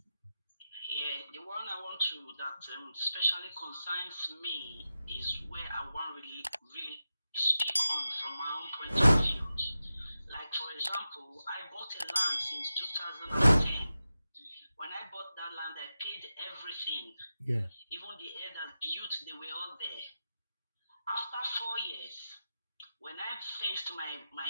Yeah, the one I want to that especially concerns me is where I want really speak on from my own point of view. Like for example, I bought a land since 2010. When I bought that land, I paid everything. Yeah. Even the air that built, they were all there. After 4 years, when I fenced my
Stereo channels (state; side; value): inverted; both; correlation -0.92